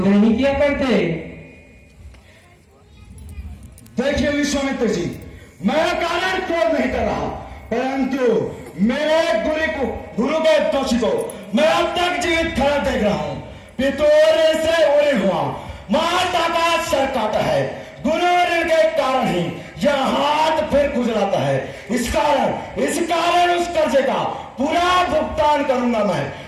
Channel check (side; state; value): both; identical; correlation 1.00